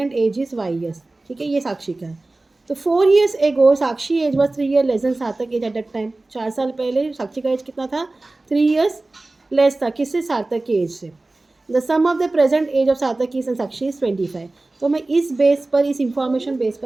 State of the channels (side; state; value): left; quieter; 3.0 dB